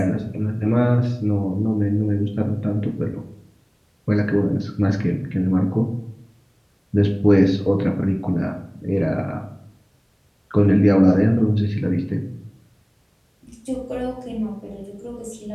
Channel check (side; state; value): both; identical; correlation 1.00